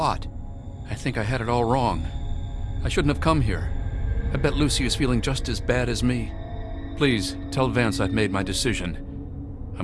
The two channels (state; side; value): identical; both; correlation 1.00